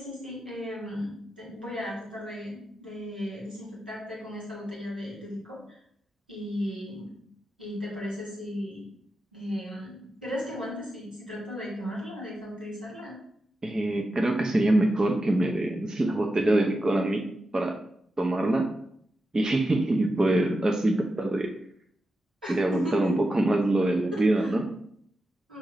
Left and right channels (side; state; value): both; normal; correlation 0.90